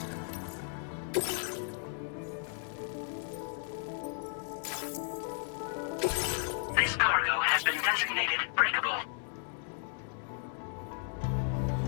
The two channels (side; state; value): right; silent; 55 dB below the other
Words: This cargo has been designated breakable.